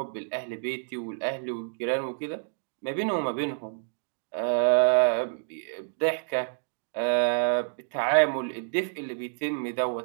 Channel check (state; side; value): silent; left; digital silence